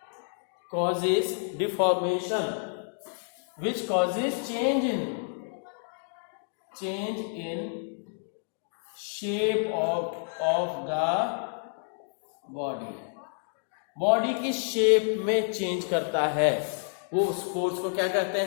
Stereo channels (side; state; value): right; silent; digital silence